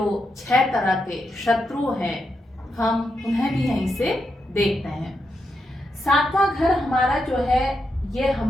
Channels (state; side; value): normal; both; correlation 0.84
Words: 6 तरह के शत्रु हैं, हम उन्हें भी यहीं से देखते हैं। 7वां घर हमारा जो है, ये